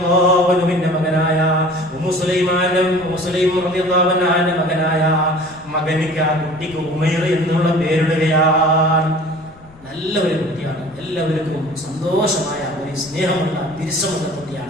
അൻഹുവിന്റെ മകനായ ഉമ്മു സുലൈം റളിയല്ലാഹു അൻഹയുടെ മകനായ മകനിക്ക്, ആ കുട്ടിക്ക് ഉമൈർ എന്നുള്ള പേരിടുകയാണ്. നല്ല ഒരു കുട്ടിയാണ്, എല്ലാവർക്കും സന്തോഷമായ ഒരു സ്നേഹമുള്ള തിരിച്ചമുള്ള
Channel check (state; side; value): noise; left; rumble, 25 dB below the sound